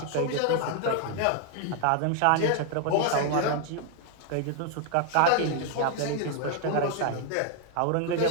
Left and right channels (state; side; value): different; both; correlation 0.00